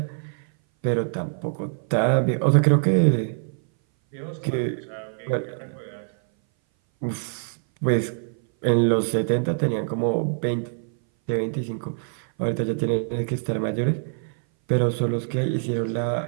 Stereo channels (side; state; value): left; silent; 59 dB below the other